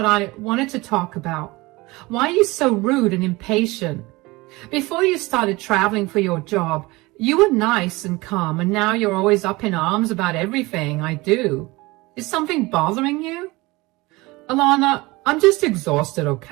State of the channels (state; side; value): quieter; left; 22.1 dB